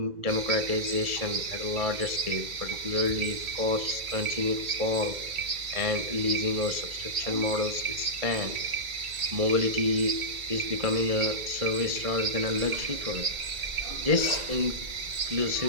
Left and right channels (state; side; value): late; left; 2.3 ms